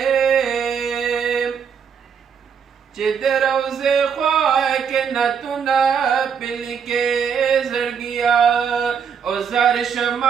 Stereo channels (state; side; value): quieter; left; 7.0 dB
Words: چې د روضې خوا کې نعتونه پرې لیکې زړګیا او زار